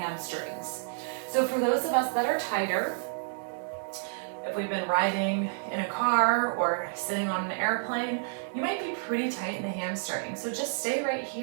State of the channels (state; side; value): silent; left; 58 dB below the other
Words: So for those of us that are tighter, if we've been riding in a car or sitting on an airplane, you might be pretty tight in the hamstring. So just stay right